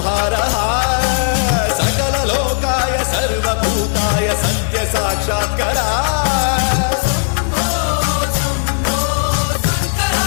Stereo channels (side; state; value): right; silent; digital silence